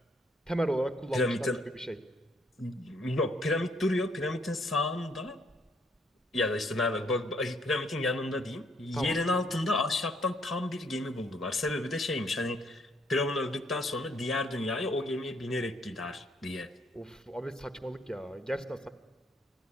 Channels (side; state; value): both; normal; correlation 0.68